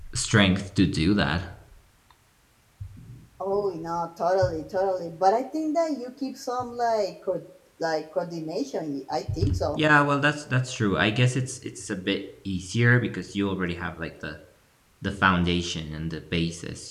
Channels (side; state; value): both; identical; correlation 1.00